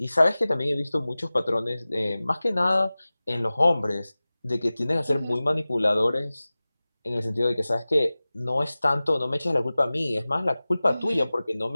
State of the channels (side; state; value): both; inverted; correlation -0.98